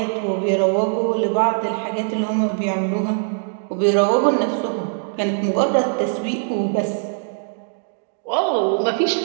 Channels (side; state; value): left; silent; digital silence